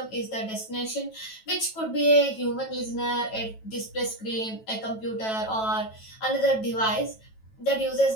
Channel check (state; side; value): late; right; 9.2 ms